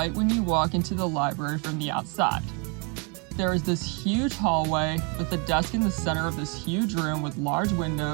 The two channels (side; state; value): left; quieter; 33.4 dB